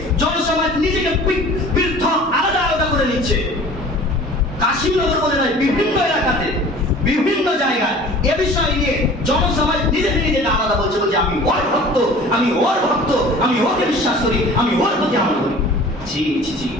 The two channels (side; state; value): both; normal; correlation 0.44